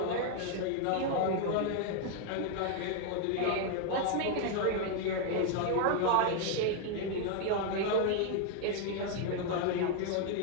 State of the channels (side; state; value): both; different; correlation 0.00